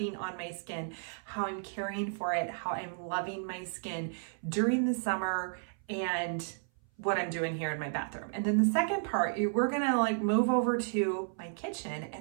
on my skin, how I'm caring for it, how I'm loving my skin during the summer, and what I'm doing here in my bathroom. And then the second part, we're gonna move over to my kitchen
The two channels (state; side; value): silent; left; 56 dB below the other